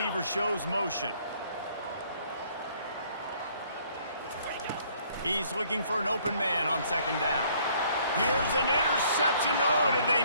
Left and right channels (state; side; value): inverted; both; correlation -0.62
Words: shows motion. He's looking for an open man on second down. Here's an interception. Oh, did they